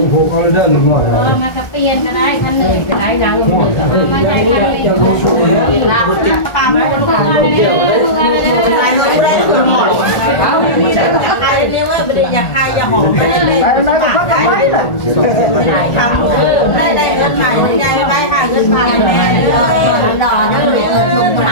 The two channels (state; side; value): late; right; 1.4 ms